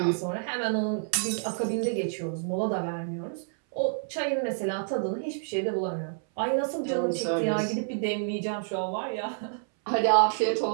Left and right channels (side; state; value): left; silent; 59 dB below the other